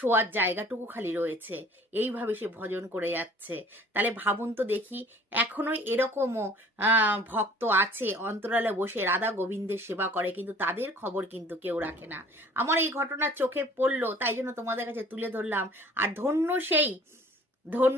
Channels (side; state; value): both; normal; correlation 0.51